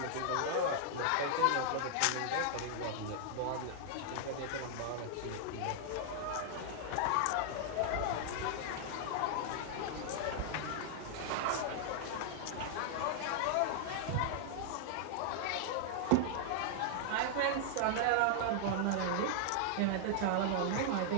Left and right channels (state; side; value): different; both; correlation -0.01